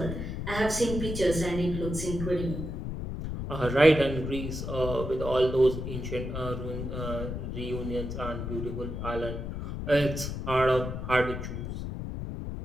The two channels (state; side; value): noise; left; rumble, 5 dB below the sound